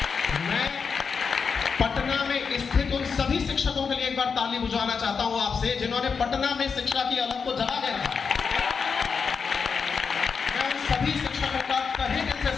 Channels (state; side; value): quieter; right; 5.7 dB